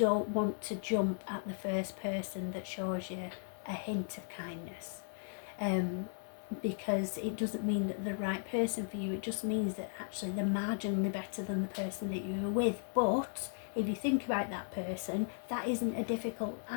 want to jump at the first person that shows you a hint of kindness, because it doesn't mean that they're the right person for you. It just means that actually they're marginally better than the person that you were with. But if you think about that person, that isn't a difficult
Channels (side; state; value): right; silent; digital silence